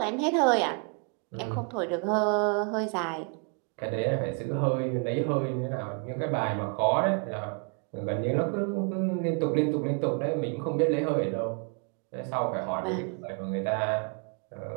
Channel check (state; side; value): quieter; left; 39.5 dB